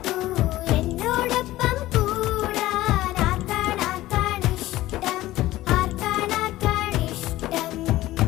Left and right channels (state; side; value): quieter; right; 16.3 dB